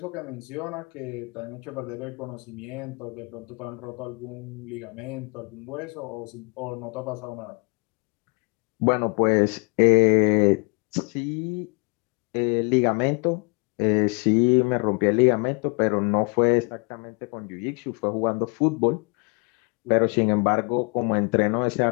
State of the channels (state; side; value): quieter; right; 33.7 dB